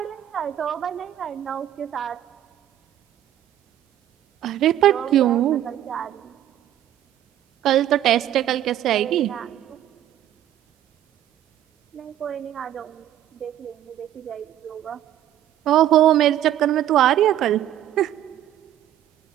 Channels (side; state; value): left; quieter; 11.9 dB